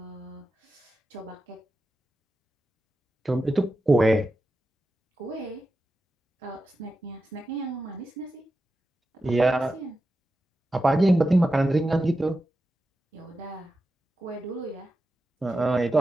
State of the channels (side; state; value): both; normal; correlation 0.91